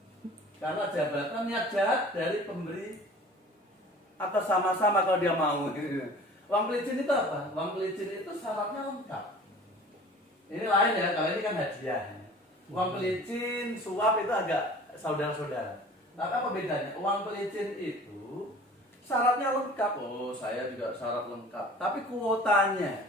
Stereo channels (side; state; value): both; normal; correlation 0.45